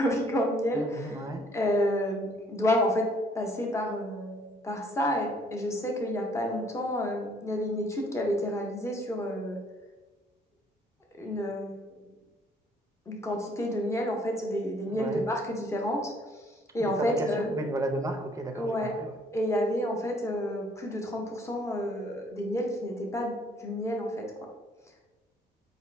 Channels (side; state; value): both; normal; correlation 0.62